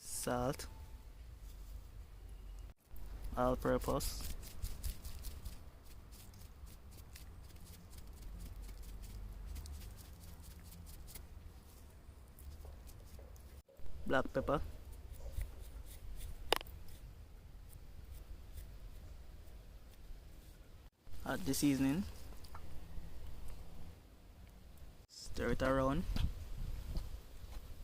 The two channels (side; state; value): both; identical; correlation 1.00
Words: all-purpose, black pepper, add the seasoning, stir it around.